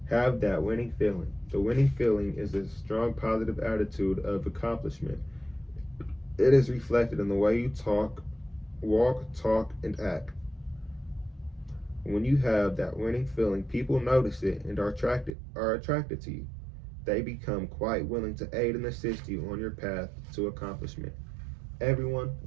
Have that winning feeling. The winning feeling is a strong positive attitude of accomplishment. It is reflected in the way you walk, talk, and act. When you have that winning feeling, people notice it and are attracted to you. They become quite willing to aid and assist you on your path to accomplishment. Everyone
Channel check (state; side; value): drops out; left; at 15.3 s